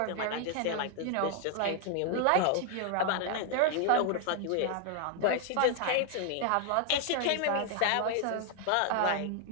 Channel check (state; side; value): different; both; correlation 0.00